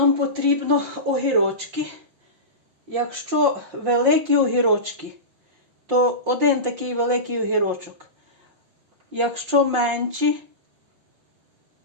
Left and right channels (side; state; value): left; late; 5.7 ms